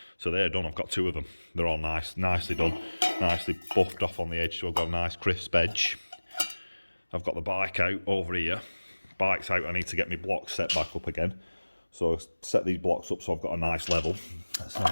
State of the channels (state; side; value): inverted; both; correlation -1.00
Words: So they're done. I've got 2 of them. They're all nicely done, nicely buffed off on the edge. So I've got a nice crisp edge. I've got the bike out over here. Bike's out. I need to get my blocks set back up again. So I'll set these blocks up so I've got a nice level. That's how